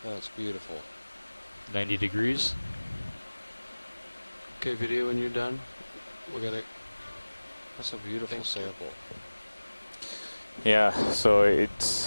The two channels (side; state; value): both; inverted; correlation -1.00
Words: That's beautiful. 90 degrees. Okay, video, when you're done, we'll get it. That's a beautiful sample. Yeah, so